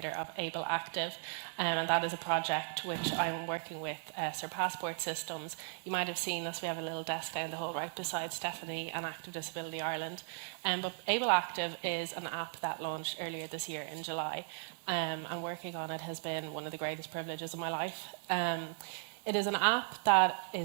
of Able Active, and that is a project which I'm working with Surpass Sports Systems. You might have seen us. We have a little desk down the hall right beside Stephanie and Active Disability Ireland. But Able Active is an app that launched earlier this year in July, and working on it has been one of the greatest privileges of my life. It is an app that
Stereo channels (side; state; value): left; silent; digital silence